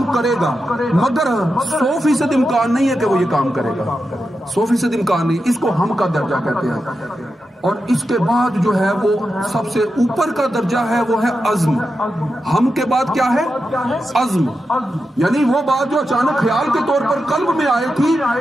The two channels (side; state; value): both; normal; correlation 0.89